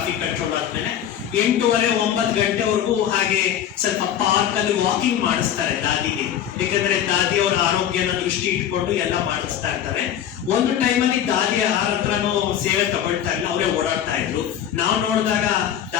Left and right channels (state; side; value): quieter; right; 10.1 dB